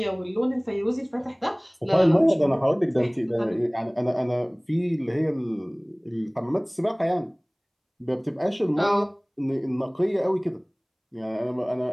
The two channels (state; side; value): identical; both; correlation 1.00